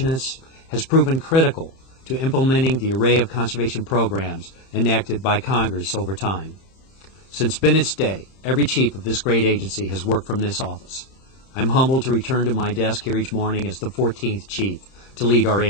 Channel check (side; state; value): right; late; 30 ms